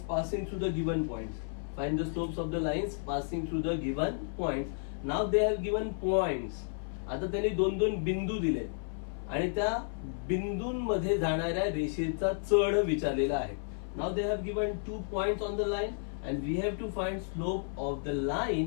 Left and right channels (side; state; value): right; silent; 56 dB below the other